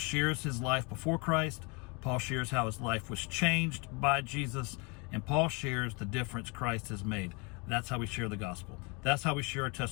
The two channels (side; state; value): right; quieter; 30.3 dB